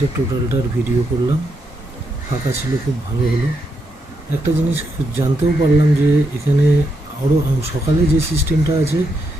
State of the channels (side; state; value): both; normal; correlation 0.80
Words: টোটালটার ভিডিও করলাম। ফাঁকা ছিল, খুব ভালো হলো। একটা জিনিস জানতেও পারলাম যে এখানে আরও সকালে যে সিস্টেমটা আছে,